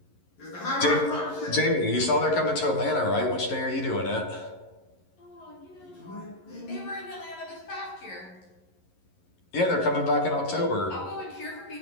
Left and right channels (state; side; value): late; right; 11 ms